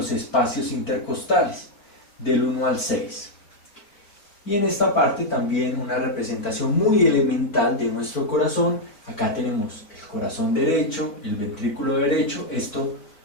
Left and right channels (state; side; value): late; right; 4.5 ms